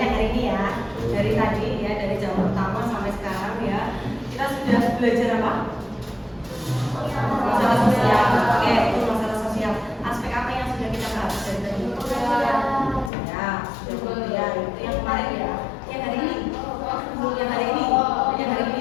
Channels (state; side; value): drops out; right; at 13.1 s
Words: hari ini ya, dari tadi ya, dari jam pertama sampai sekarang ya. Kita sudah belajar apa? Masalah sosial. Oke, itu masalah sosial. Aspek apa yang sudah kita bahas dari tadi? Ya, sudah kemudian itu yang kemarin ya, yang hari ini, yang hari ini, yang hari